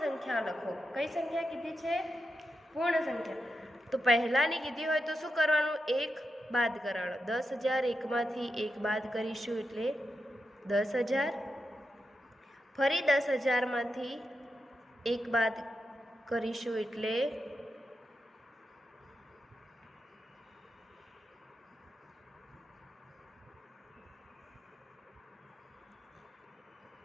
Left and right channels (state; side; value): normal; both; correlation 0.87